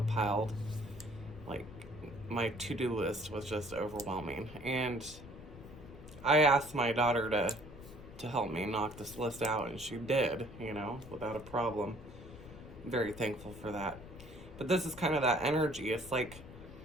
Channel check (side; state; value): left; noise; rumble, 16 dB below the sound